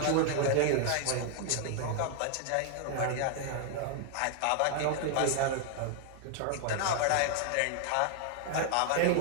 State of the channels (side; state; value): both; different; correlation 0.00